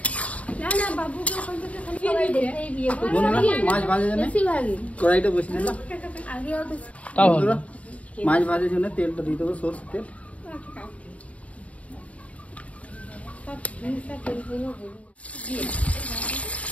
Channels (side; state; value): right; late; 0.066 ms